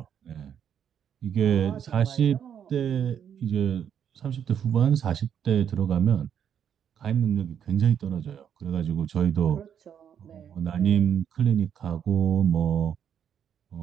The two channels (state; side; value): quieter; left; 8.6 dB